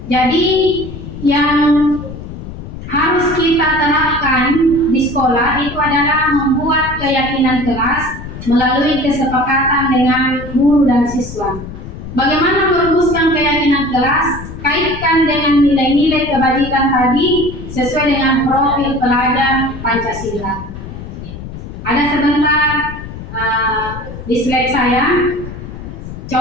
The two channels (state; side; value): noise; left; rumble, 11 dB below the sound